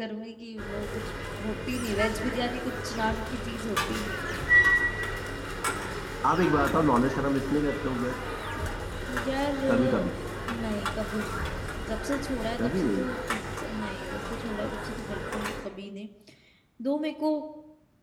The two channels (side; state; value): both; identical; correlation 1.00